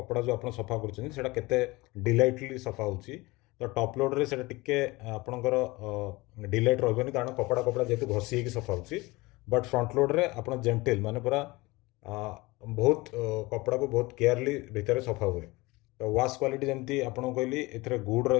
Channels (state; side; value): quieter; right; 22.3 dB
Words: जो आप सफा कर डिलाइटली सफा हो। तो टॉप लोड रे से टिके आपणकर डिलाइट रही कारण कपड़ा कपड़ा जेहतु घसी होगी सफा हो। बट फ्रंट लोड रे आप जेंटिल माने पूरा बहुत कपड़ा को बहुत केयरली भितर सफा हुए। तो वाश क्वालिटी जमती आपको कहली ए गुड